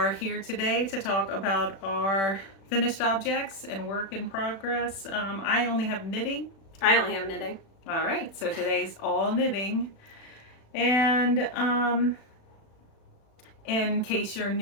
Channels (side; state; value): right; late; 36 ms